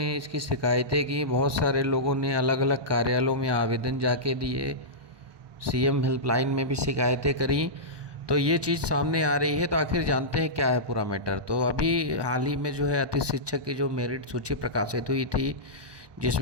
इसकी शिकायतें की, बहुत सारे लोगों ने अलग अलग कार्यालयों में आवेदन जाके दिए, सीएम हेल्पलाइन में भी शिकायतें करी। तो ये चीज़ सामने आ रही है। तो आखिर जानते हैं क्या है पूरा मैटर। तो अभी हाल ही में जो है अतिथि शिक्षक की जो मेरिट सूची प्रकाशित हुई थी,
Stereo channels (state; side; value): late; left; 1.2 ms